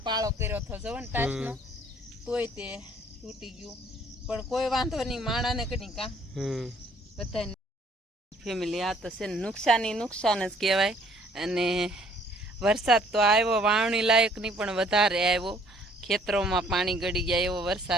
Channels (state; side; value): normal; both; correlation 0.61